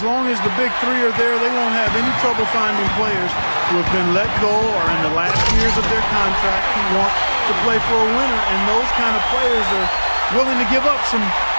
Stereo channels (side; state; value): both; inverted; correlation -1.00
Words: long as the big three are there, they won't have any trouble finding players who have been let go or in the last years of their contract who want to play for a winner, and those kind of players are willing to give up some